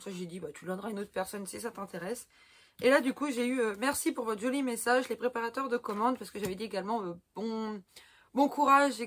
ça, j'ai dit, bah, tu le donneras à une autre personne si ça t'intéresse. Et là, du coup, j'ai eu merci pour votre joli message, les préparateurs de commandes. Parce que j'avais dit également bon courage,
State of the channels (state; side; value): identical; both; correlation 1.00